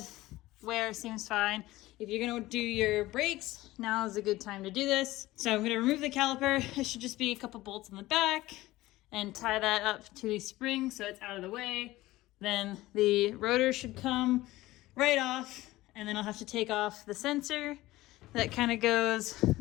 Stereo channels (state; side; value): quieter; right; 17.7 dB